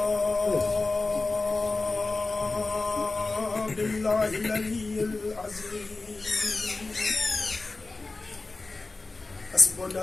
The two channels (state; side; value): quieter; right; 3.5 dB